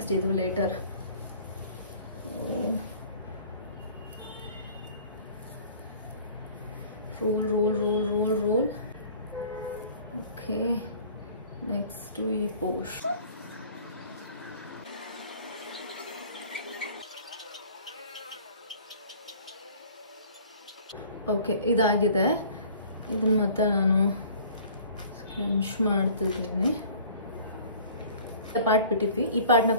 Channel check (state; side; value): inverted; both; correlation -0.49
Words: ಇದು later. Roll roll roll roll roll. Okay, next ಈ ಪೋಸ್ಟ್. ಓಕೆ, ಇದಾಗಿದೆ. ಇದನ್ನು ಮತ್ತೆ ನಾನು ಸ್ಕ್ರಂಚ್ ಮಾಡ್ತಿದ್ದೀನಿ. ಪಾರ್ಟ್ ಬಿಟ್ಟಿದ್ವಿ, ಈ ಪಾರ್ಟ್ನ